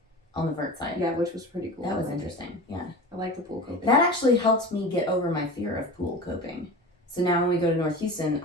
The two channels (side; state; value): both; normal; correlation 0.33